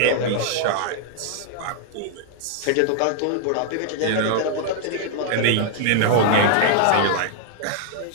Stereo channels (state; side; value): different; both; correlation -0.01